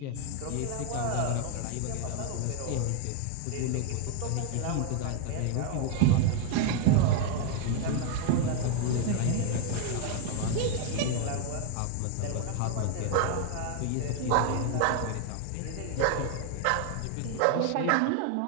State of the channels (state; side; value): different; both; correlation 0.00